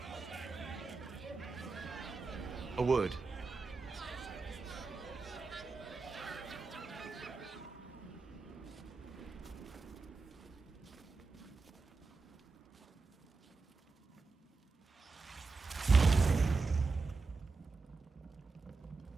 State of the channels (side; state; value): left; quieter; 4.2 dB